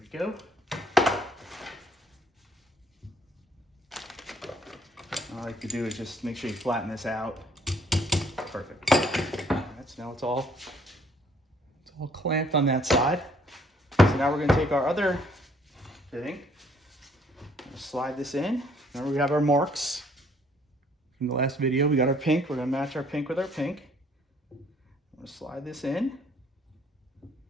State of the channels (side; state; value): both; normal; correlation 0.62